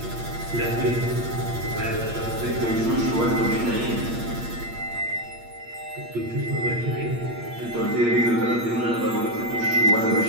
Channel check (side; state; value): left; late; 8.6 ms